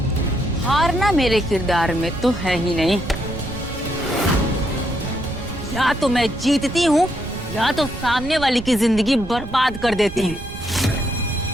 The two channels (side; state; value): right; noise; rumble, 11 dB below the sound